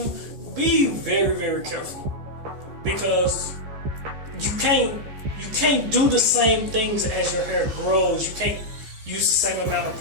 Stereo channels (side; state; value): left; late; 15 ms